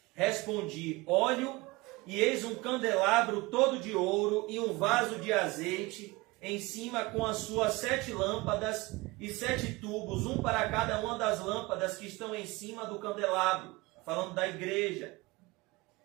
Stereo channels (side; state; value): left; quieter; 22.7 dB